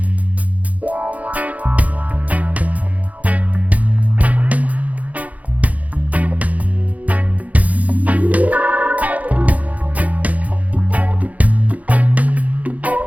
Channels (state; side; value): late; left; 0.072 ms